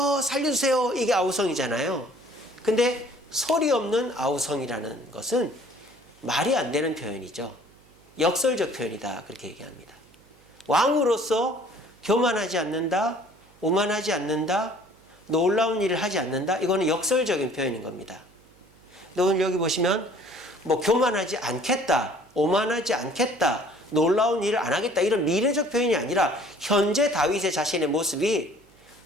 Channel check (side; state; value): right; noise; hum, 29 dB below the sound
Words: 살려주세요. 이게 아우성이잖아요. 근데 소리 없는 아우성이라는 것은 말이 안 되는 표현이죠. 역설적 표현이다. 그렇게 얘기합니다. 왕으로서 교만하지 않는다, 오만하지 않는다, 놀라운 일을 하지 않는다. 이거는 역설적인 표현인 겁니다. 오늘 여기 보시면 뭐 교만하지 않겠다, 오만하지 않겠다, 놀라운 일을 안 하겠다 이런 미래적 표현이 아니라 현재 다윗의 자신의 모습이